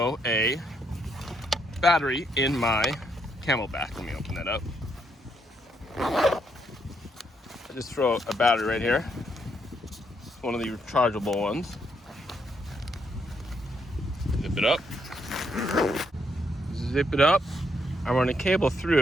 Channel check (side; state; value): both; normal; correlation 0.76